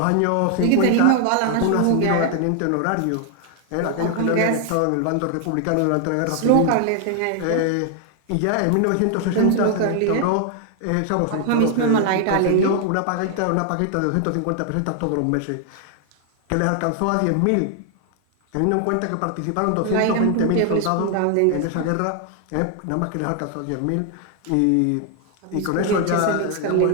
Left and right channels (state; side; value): different; both; correlation 0.00